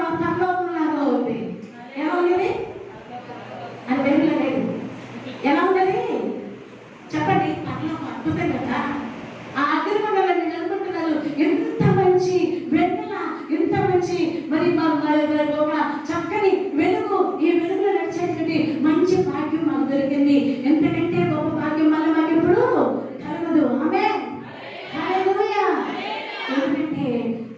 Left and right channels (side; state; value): both; identical; correlation 1.00